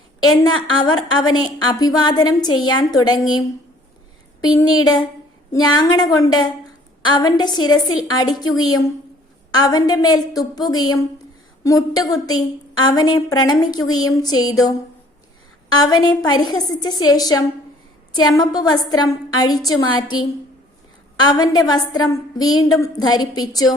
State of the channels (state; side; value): normal; both; correlation 0.57